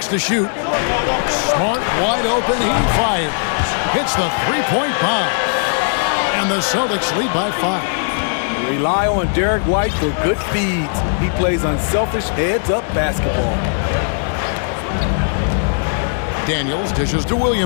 to shoot. Smart wide open. He fires. Hits the 3-point bomb. And the Celtics lead by 5. Rely on Derek White for good feeds. He plays unselfish heads-up basketball. Daniels dishes to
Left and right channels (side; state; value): right; silent; 65 dB below the other